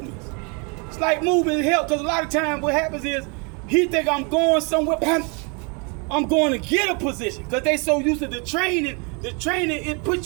help, because a lot of times what happens is he think I'm going somewhere, I'm going to get a position, because they so used to the training, it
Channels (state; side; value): quieter; left; 33.4 dB